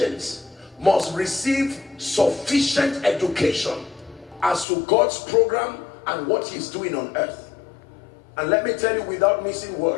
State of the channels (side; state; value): right; drops out; at 4.7 s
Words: must receive sufficient education as to God's program and what He's doing on earth. And let me tell you without missing